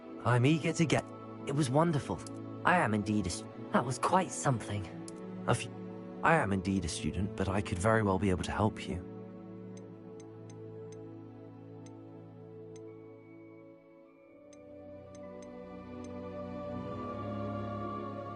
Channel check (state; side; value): identical; both; correlation 1.00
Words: I'm eager to get... It was wonderful. I am indeed a... That was quite something. I am indeed a student, but I could very well be able to help you.